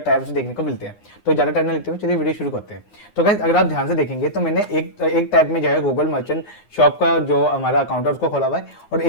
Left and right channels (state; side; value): late; right; 9.9 ms